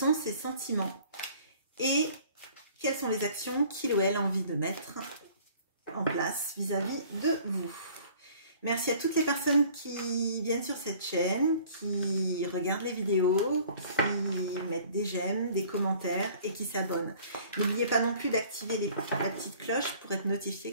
ses sentiments et quelles sont les actions qu'il ou elle a envie de mettre en place vis-à-vis de vous. Merci à toutes les personnes qui viennent sur cette chaîne, qui regardent les vidéos, qui mettent des j'aime, des commentaires et qui s'abonnent. N'oubliez pas non plus d'activer la petite cloche pour être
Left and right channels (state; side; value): inverted; both; correlation -0.52